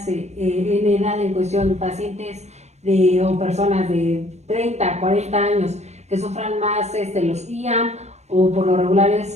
en edad en cuestión, pacientes o personas de 30, 40 años que sufran más los IAM o por lo regular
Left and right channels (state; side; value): late; left; 0.32 ms